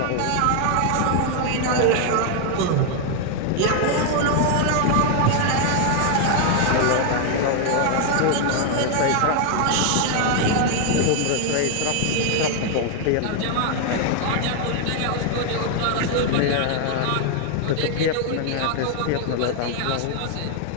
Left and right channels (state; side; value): different; both; correlation 0.00